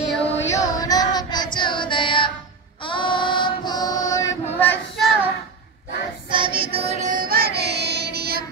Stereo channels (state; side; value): quieter; left; 4.7 dB